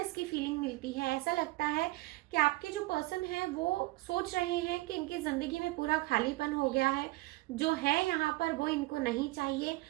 की फीलिंग मिलती है। ऐसा लगता है कि आपके जो पर्सन है वो सोच रहे हैं कि इनकी जिंदगी में पूरा खालीपन हो गया है, जो है यहाँ पर वो इनको नहीं चाहिए,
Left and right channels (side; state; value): left; quieter; 20.8 dB